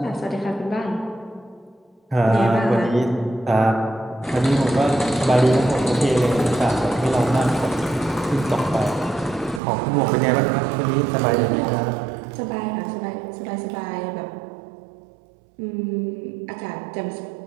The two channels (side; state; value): left; drops out; at 9.6 s